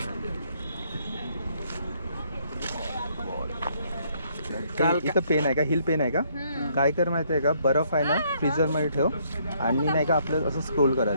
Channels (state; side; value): inverted; both; correlation -0.68